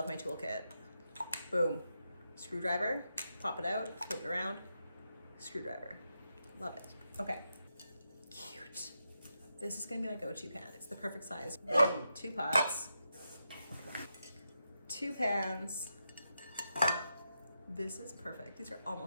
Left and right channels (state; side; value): inverted; both; correlation -0.86